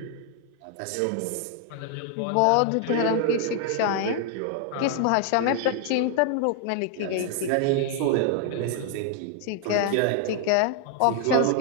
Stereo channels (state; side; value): different; both; correlation 0.00